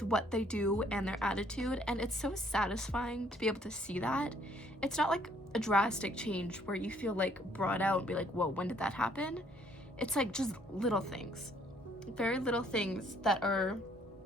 what they do and their attitude, and it's so satisfying to be able to see that. It's not like a drastic change where you feel like brought out and be like, whoa, when did that happen? It's like just little things, very little things that are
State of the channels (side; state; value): both; normal; correlation 0.64